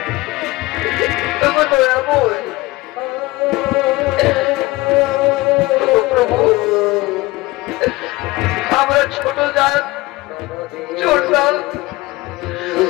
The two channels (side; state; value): right; quieter; 20.5 dB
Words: তুমি দয়াময় প্রভু। আমরা ছোট জাত, ছোট জাত,